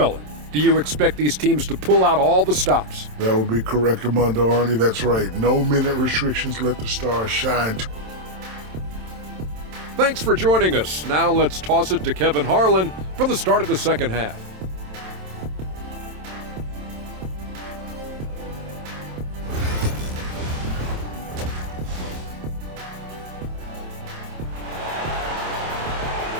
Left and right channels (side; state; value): left; late; 27 ms